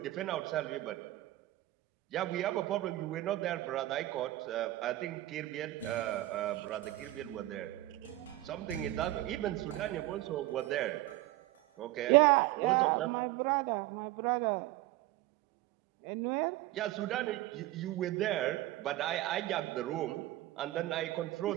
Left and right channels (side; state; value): left; quieter; 16.7 dB